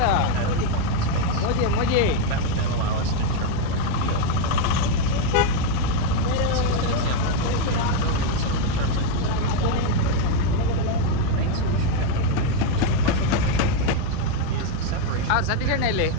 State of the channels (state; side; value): different; both; correlation 0.02